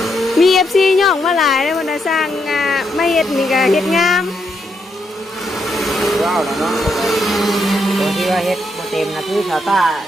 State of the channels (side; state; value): both; normal; correlation 0.79